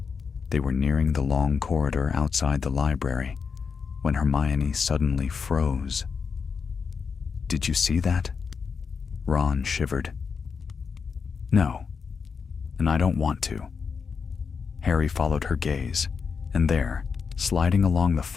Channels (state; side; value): quieter; right; 5.7 dB